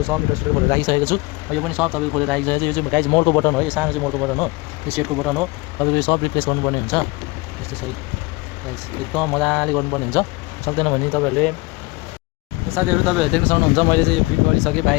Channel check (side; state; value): right; quieter; 23.7 dB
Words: सब मिटर सिटर खोलेर राखिसकेको छु। यो पनि सब तपाईको खोलेर राखिसकेको छु। यो चाहिँ गाइस मोडको बटन हो, यो सानो चाहिँ मोडको बटन हो, यो सेटको बटन हो। तपाईको यो सब रिप्लेस गर्नुपर्ने हुन्छ यस्तो छ गाइस, एकदम मजाले गर्नुपर्ने हुन्छ। सक्दैन भने तपाईहरुले साथीहरु तपाईहरुले देख्न सक्नुहुन्छ मैले चाहिँ यो फिट गरिसकेँ